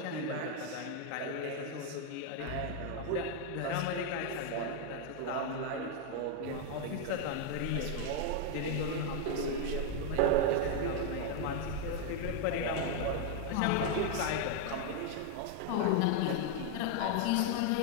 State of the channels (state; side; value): different; both; correlation 0.00